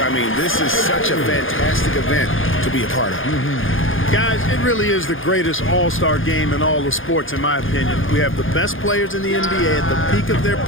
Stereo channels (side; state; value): right; late; 0.58 ms